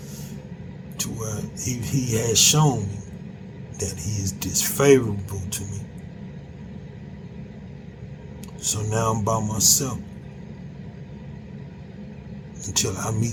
to where he has shown me that he is disfavorable to me. So now I'm by myself. Until I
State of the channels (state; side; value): identical; both; correlation 1.00